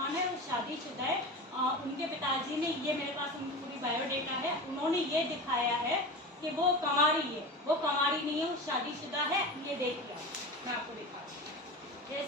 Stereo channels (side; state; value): both; normal; correlation 0.28